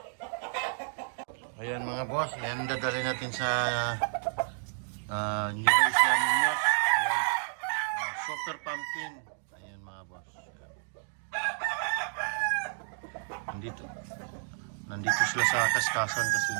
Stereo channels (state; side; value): silent; left; digital silence